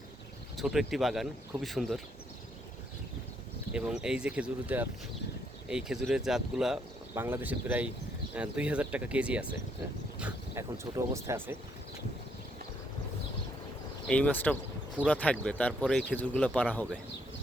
ছোট একটি বাগান, খুবই সুন্দর। এবং এই যে এই খেজুরের জাতগুলা বাংলাদেশে প্রায় 2000 টাকা কেজি আছে। হ্যাঁ, এখন ছোট অবস্থায় আছে। এই মাছটা পুরা থাকবে, তারপরে এই খেজুরগুলো পাড়া হবে।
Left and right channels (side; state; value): both; normal; correlation 0.72